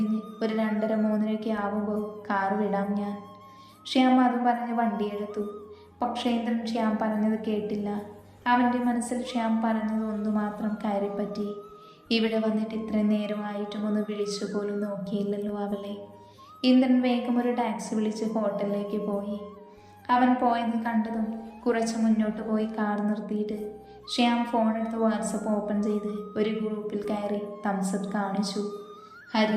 ഒരു 2:30-3 ആവുമ്പോൾ കാർ വിടാം ഞാൻ. ശ്യാം അതും പറഞ്ഞ് വണ്ടിയെടുത്തു. പക്ഷേ ഇന്ദ്രൻ ശ്യാം പറഞ്ഞത് കേട്ടില്ല. അവൻ്റെ മനസ്സിൽ ശ്യാം പറഞ്ഞത് ഒന്നു മാത്രം കയറിപ്പറ്റി. ഇവിടെ വന്നിട്ട് ഇത്രയും നേരമായിട്ടും ഒന്ന് വിളിച്ചു പോലും നോക്കിയില്ലല്ലോ അവളെ. ഇന്ദ്രൻ വേഗം ഒരു ടാക്സി വിളിച്ച് ഹോട്ടലിലേക്ക് പോയി. അവൻ പോയത് കണ്ടതും കുറച്ച് മുന്നോട്ട് പോയി കാർ നിർത്തിയിട്ട് ശ്യാം ഫോണെടുത്ത് വാട്സപ്പ് ഓപ്പൺ ചെയ്ത് ഒരു ഗ്രൂപ്പിൽ കയറി തംസപ്പ് കാണിച്ചു.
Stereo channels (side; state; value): both; identical; correlation 1.00